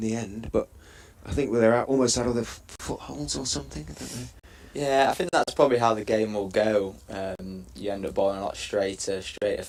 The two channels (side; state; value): both; identical; correlation 1.00